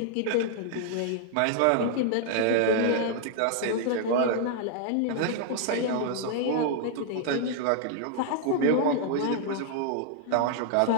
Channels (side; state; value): both; different; correlation 0.00